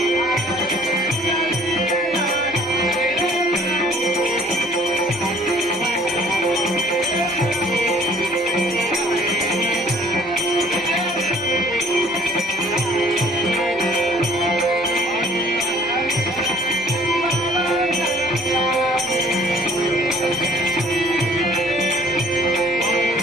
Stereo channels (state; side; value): normal; both; correlation 0.55